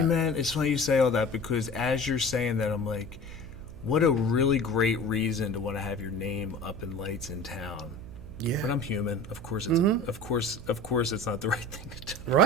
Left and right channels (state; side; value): noise; right; hum, 15 dB below the sound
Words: that. man? It's funny you say all that, because as you're saying that, I'm like, what a really great reason to want to have your name up in lights in town. Yeah. But I'm human. Of course, it's of course, it's not the right thing to do.